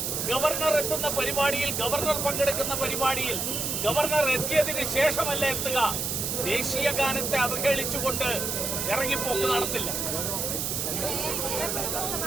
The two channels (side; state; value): right; noise; hiss, 1 dB below the sound